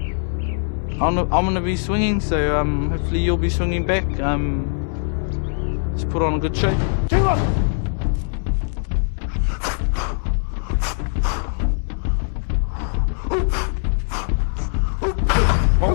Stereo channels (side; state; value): right; silent; 65 dB below the other